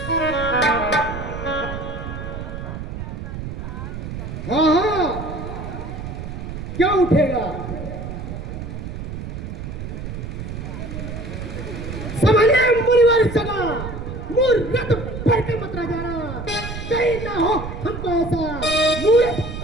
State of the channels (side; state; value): right; noise; rumble, 7 dB below the sound